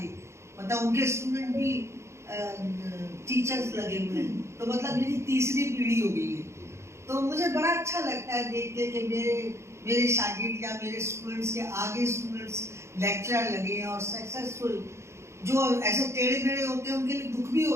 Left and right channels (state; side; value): late; left; 0.13 ms